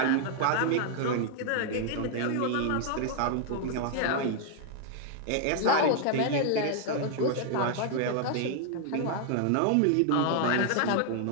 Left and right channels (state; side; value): different; both; correlation 0.00